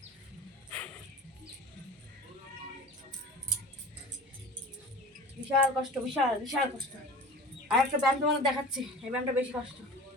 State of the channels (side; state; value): both; normal; correlation 0.38